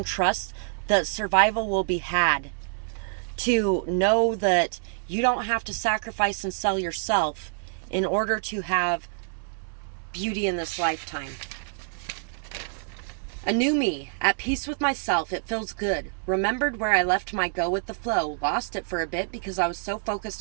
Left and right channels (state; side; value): silent; left; digital silence